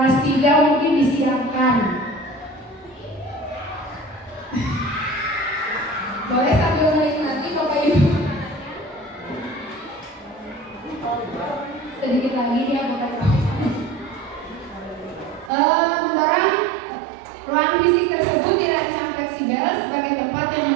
3 mungkin disiapkan. Boleh sambil menikmati Bapak Ibu. Sedikit lagi ya Bapak Ibu. Mendorong ruang fisik tersebut dirancang fleksibel sebagai tempat yang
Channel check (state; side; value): drops out; left; at 15.5 s